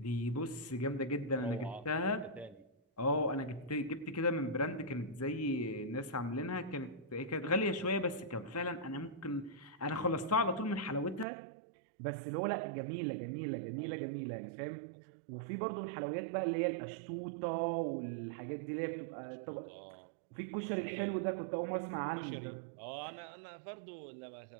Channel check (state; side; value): drops out; left; at 11.2 s